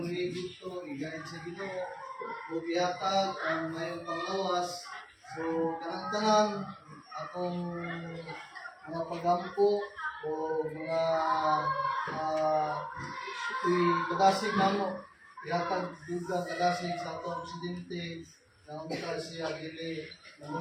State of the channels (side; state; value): both; identical; correlation 1.00